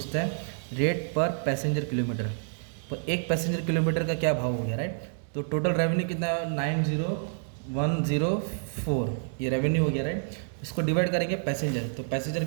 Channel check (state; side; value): silent; left; 59 dB below the other